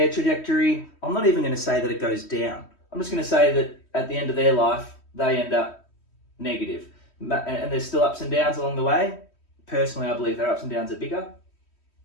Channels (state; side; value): late; right; 3.1 ms